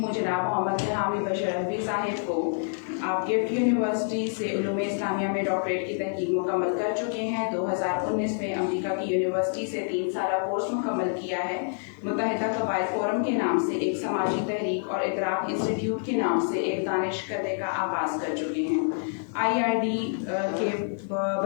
جناب محمد حمید بشر رضوی صاحب کو. آپ گفٹ یونیورسٹی سے علوم اسلامیہ میں ڈاکٹریٹ کی تحقیق مکمل کر چکے ہیں. 2019 میں امریکہ کی یونیورسٹی سے 3 سالہ کورس مکمل کیا ہے. متحدہ قبائل فورم کے نام سے ایک سماجی تحریک اور ادراک انسٹیٹیوٹ کے نام سے ایک دانش کدے کا آغاز کر چکے ہیں. IRD کے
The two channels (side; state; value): right; silent; 59 dB below the other